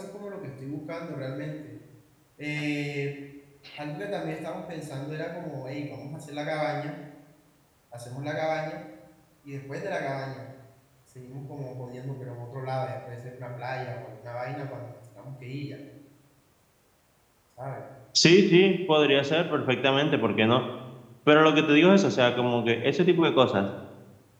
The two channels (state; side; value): identical; both; correlation 1.00